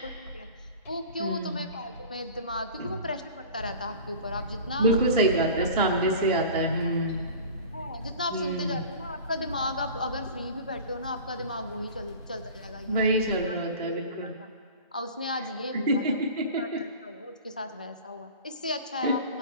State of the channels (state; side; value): inverted; both; correlation -0.39